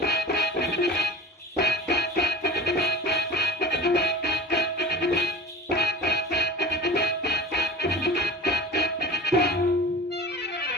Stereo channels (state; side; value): normal; both; correlation 0.38